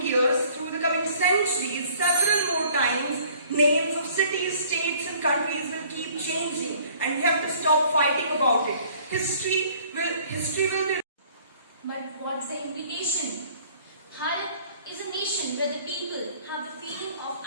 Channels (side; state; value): both; inverted; correlation -0.55